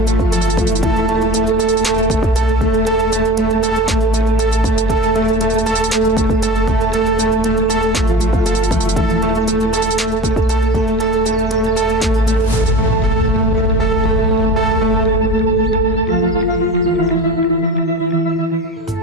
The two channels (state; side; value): normal; both; correlation 0.35